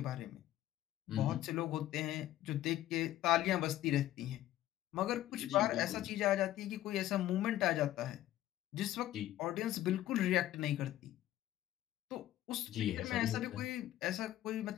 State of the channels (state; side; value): quieter; right; 13.7 dB